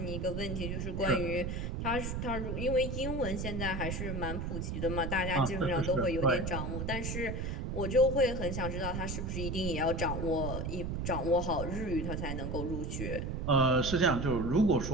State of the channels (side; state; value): right; noise; rumble, 3 dB below the sound